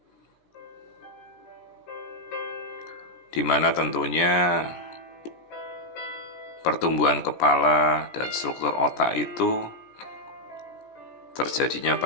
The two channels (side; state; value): right; late; 17 ms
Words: di mana tentunya pertumbuhan kepala dan struktur otak itu terjadinya